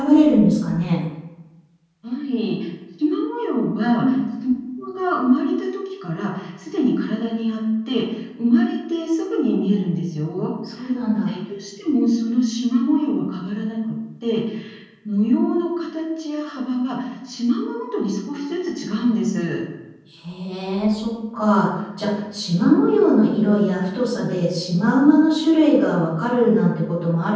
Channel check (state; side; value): identical; both; correlation 1.00